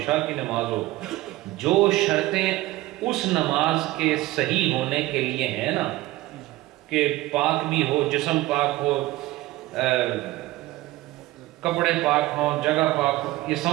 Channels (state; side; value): quieter; left; 17.9 dB